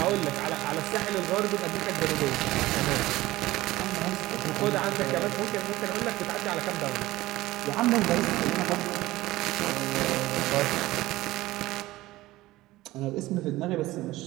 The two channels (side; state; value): left; quieter; 17.7 dB